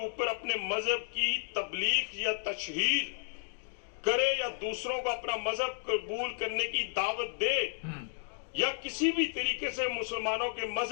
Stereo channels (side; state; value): right; silent; digital silence